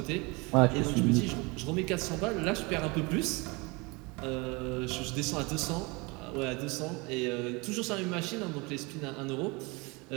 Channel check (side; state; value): left; quieter; 26.9 dB